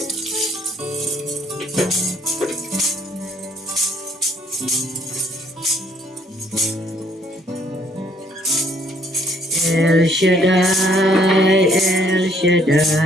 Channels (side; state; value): both; normal; correlation 0.65